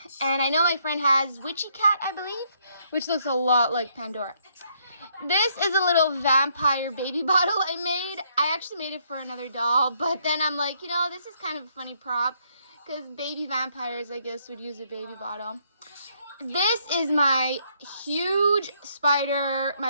And I know my friend has Witchy Cat, I believe, which looks a lot like Pandora. This is a little vampire baby bottle I made. I actually made it for another doll, but then I'm like, you know, this is kind of a funny prop because baby vampires, I guess, would use a baby bottle. This is my huge spider,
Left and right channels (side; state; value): both; inverted; correlation -0.71